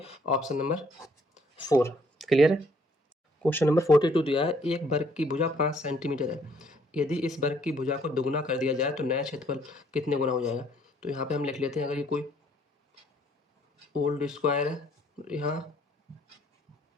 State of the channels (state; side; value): normal; both; correlation 0.65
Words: ऑप्शन नंबर 4 क्लियर है। क्वेश्चन नंबर 42 दिया है एक वर्ग की भुजा 5 सेंटीमीटर है, यदि इस वर्ग की भुजा को दुगुना कर दिया जाए तो नया क्षेत्रफल कितने गुना हो जाएगा। तो यहाँ पे हम लिख लेते हैं, अगर ये कोई ओल्ड स्क्वायर है, यहाँ